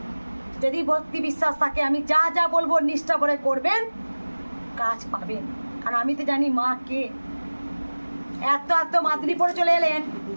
যদি ভক্তি বিশ্বাস থাকে, আমি যা যা বলবো নিষ্ঠা করে করবেন, কাজ পাবেন। কারণ আমি তো জানি মা কে। এত এত মাদুরি পরে চলে এলেন,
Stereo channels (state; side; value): inverted; both; correlation -1.00